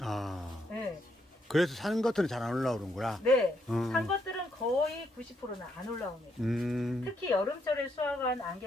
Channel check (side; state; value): both; normal; correlation 0.76